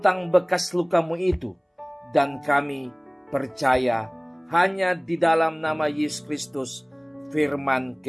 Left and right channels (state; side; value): identical; both; correlation 1.00